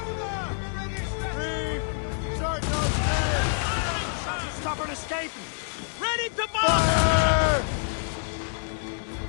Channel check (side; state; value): right; silent; digital silence